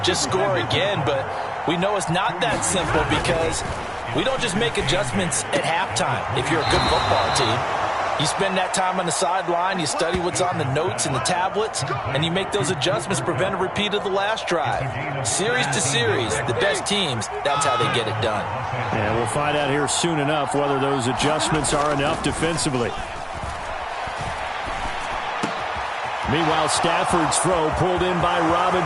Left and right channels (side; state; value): both; identical; correlation 1.00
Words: Just score again, but we know it's not that simple because we don't just make adjustments at halftime if you're a good football team. You spend that time on the sideline, you study what's on the notes and the tablets, and you make those adjustments, prevent a repeat of the last drive. Series to series, the best teams, that's how they get it done. And we'll find out here soon enough whether those adjustments are enough defensively. Meanwhile, Stafford's throw pulled in by